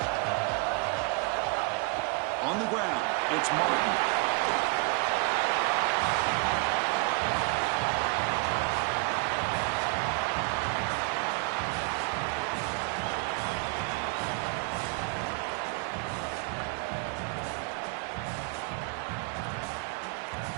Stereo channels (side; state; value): left; quieter; 29.4 dB